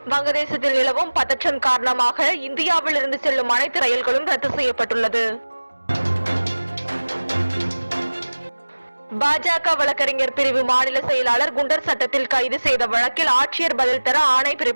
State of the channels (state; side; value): inverted; both; correlation -1.00